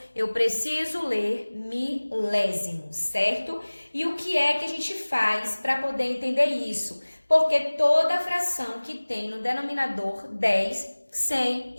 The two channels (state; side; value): inverted; both; correlation -1.00